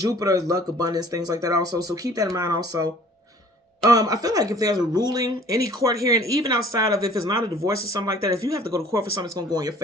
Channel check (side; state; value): both; normal; correlation 0.52